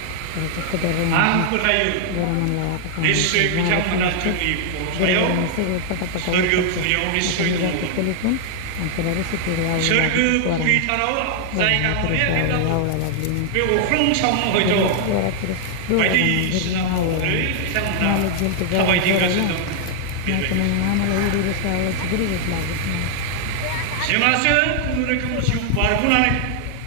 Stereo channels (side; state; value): both; different; correlation 0.00